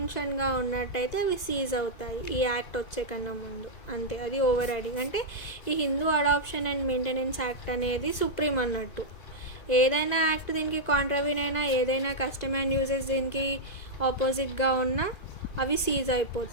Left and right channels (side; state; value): right; late; 2.0 ms